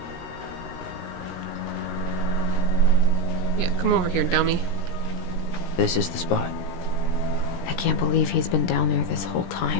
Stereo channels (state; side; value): late; right; 17 ms